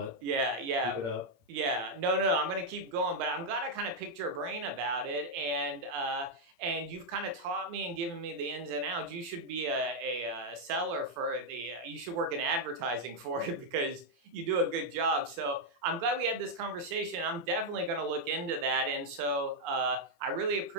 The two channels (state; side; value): late; left; 18 ms